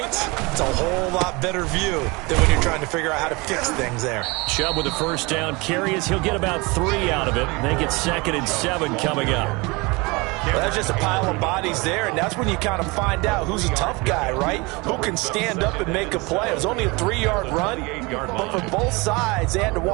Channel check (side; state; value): left; quieter; 25.9 dB